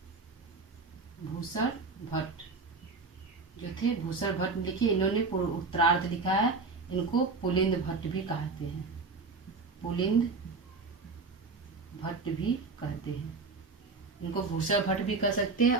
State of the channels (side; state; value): left; quieter; 4.1 dB